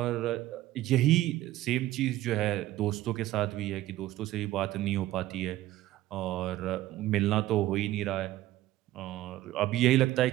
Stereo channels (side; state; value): left; quieter; 15.5 dB